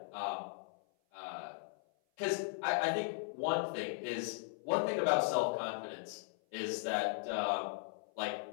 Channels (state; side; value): silent; right; 53 dB below the other